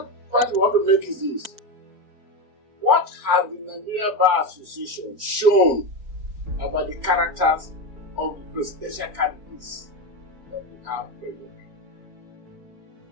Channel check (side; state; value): left; late; 4.6 ms